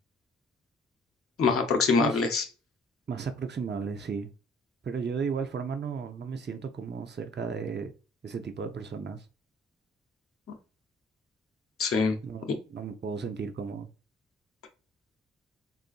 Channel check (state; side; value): normal; both; correlation 0.54